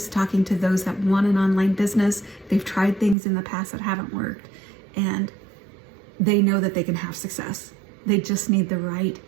talking to those that want an online business. They've tried things in the past that haven't worked, and they know that they can have success. They just need the right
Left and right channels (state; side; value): drops out; left; at 3.2 s